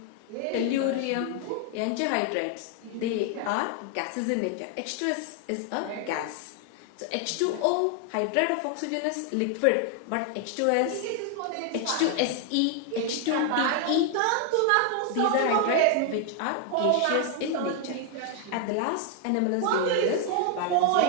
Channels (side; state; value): both; different; correlation 0.00